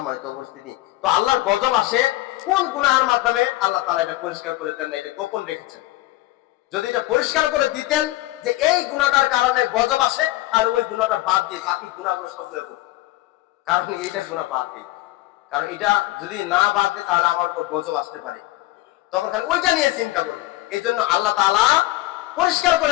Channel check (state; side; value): quieter; right; 17.7 dB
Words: উপস্থিতি, তো আল্লাহর গজব আসে কোন গুনাহের মাধ্যমে? আল্লাহ তাআলা এটা পরিষ্কার করে দেন না, এটা গোপন রেখেছেন। যদি এটা পরিষ্কার করে দিতেন যে এই গুনাহটার কারণে গজব আসে, আর ওই গুনাহটা বাদ দিয়ে বাকি গুনাহগুলো সবগুলো করতেন। কারণ এইটা গুনাহ বাদ দিই, কারণ এটা যদি না বাদ দেয় তাহলে আমার উপর গজব আসতে পারে, তখন খালি ওইটা নিয়ে চিন্তা করবে। এই জন্য আল্লাহ তাআলা পরিষ্কার করে